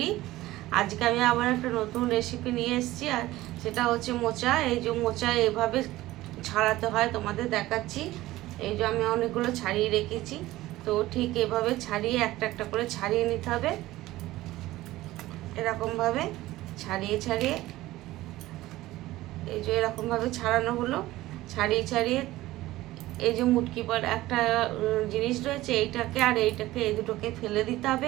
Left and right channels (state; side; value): quieter; left; 16.9 dB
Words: আজকে আমি আবার একটা নতুন রেসিপি নিয়ে এসেছি, আর সেটা হচ্ছে মোচা। এই যে মোচা এভাবে ছাড়াতে হয় তোমাদের দেখাচ্ছি। এই যে আমি অনেকগুলো ছাড়িয়ে রেখেছি, তো ঠিক এভাবে ছাড়িয়ে একটা একটা করে ছাড়িয়ে নিতে হবে। এরকমভাবে ছাড়িয়ে ছাড়িয়ে এই যে এরকমভাবে ছাড়ানো হলো। ছাড়িয়ে ছাড়িয়ে এই যে মুটকি পর একটা জিনিস রয়েছে, এইটাকে আর এইটাকে, এই দুটোকে ফেলে দিতে